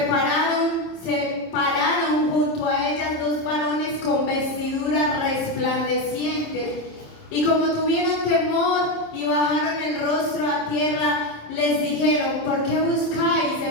pararon junto a ellas dos varones con vestiduras resplandecientes. Y como tuvieron temor y bajaron el rostro a tierra, les dijeron: ¿por qué buscáis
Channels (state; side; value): late; right; 26 ms